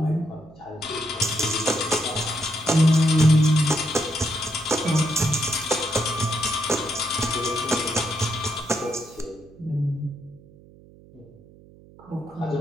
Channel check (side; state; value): right; noise; hum, 24 dB below the sound